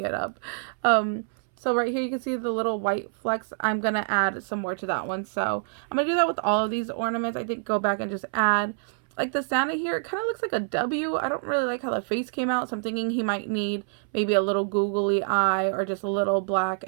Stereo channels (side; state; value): left; silent; 61 dB below the other